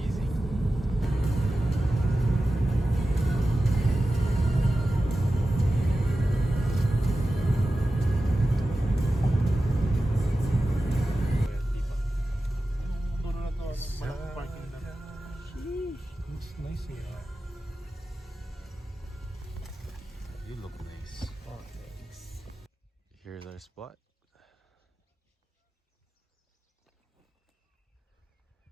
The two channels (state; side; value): normal; both; correlation 0.94